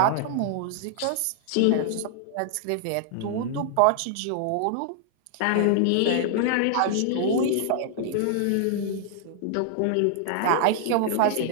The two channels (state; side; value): different; both; correlation -0.01